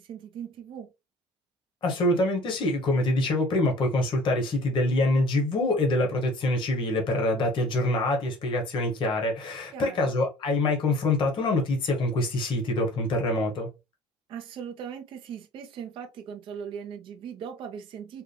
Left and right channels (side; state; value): both; normal; correlation 0.49